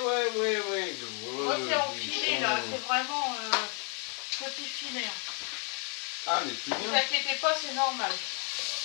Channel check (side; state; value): right; quieter; 38.1 dB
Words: Moi, c'est en filet, là. C'est vraiment petit filet. Ah, mais plus Ne vous bien. inquiétez pas, c'est normal.